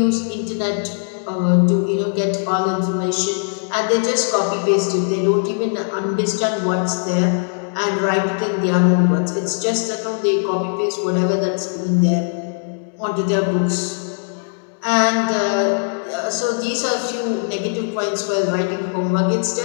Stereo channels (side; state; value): right; silent; digital silence